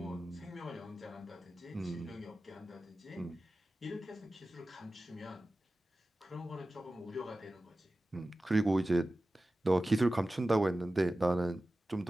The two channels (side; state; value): both; normal; correlation 0.95